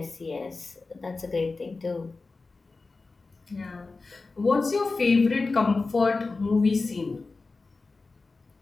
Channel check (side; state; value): right; quieter; 3.8 dB